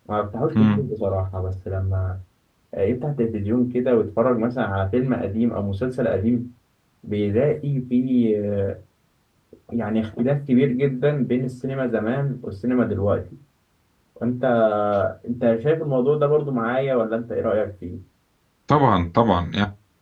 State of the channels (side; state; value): both; identical; correlation 1.00